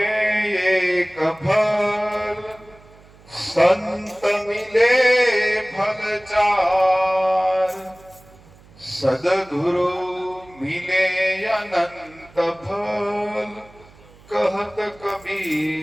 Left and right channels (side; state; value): right; noise; hum, 25 dB below the sound